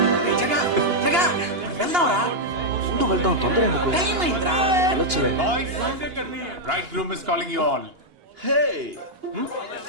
రేయ్ జగా జగా మనం వెళ్దాం రా. ఉంటూ వెళ్దాం, తొందర ఎందుకు? టైం అయిందిరా. వెళ్ళొచ్చులే. Boys, bridegroom is calling you all. Hey!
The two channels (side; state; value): left; late; 2.8 ms